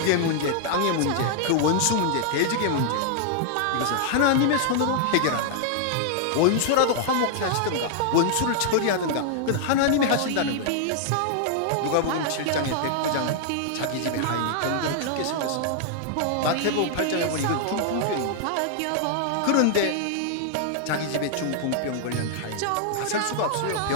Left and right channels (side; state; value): both; different; correlation -0.01